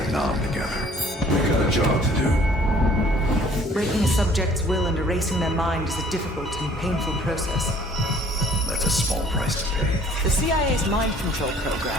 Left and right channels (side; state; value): both; normal; correlation 0.55